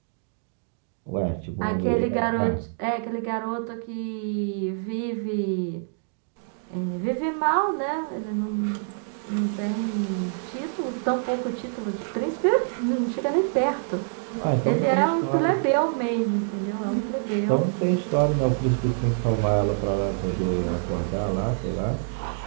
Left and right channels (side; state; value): left; silent; digital silence